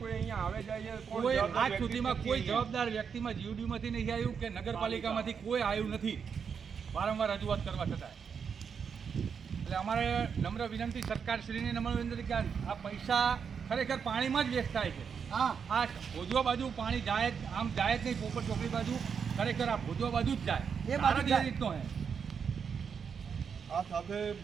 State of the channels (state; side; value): quieter; left; 6.6 dB